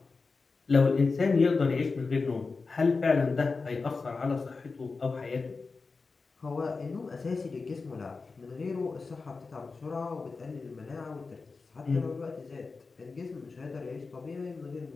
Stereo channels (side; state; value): right; quieter; 4.2 dB